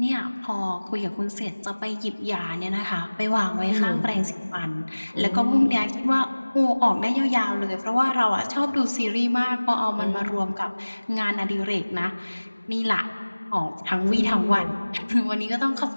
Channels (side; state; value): both; inverted; correlation -1.00